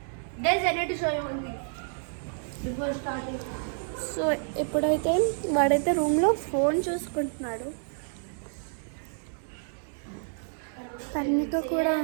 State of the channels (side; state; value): left; silent; 58 dB below the other